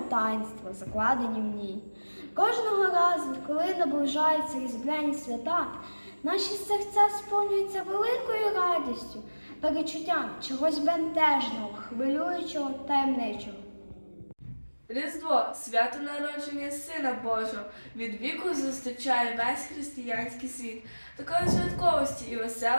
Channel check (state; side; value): inverted; both; correlation -1.00